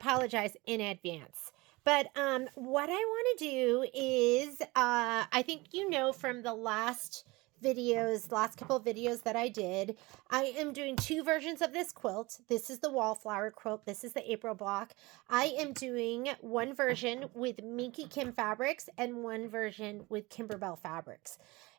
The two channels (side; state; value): left; quieter; 23.0 dB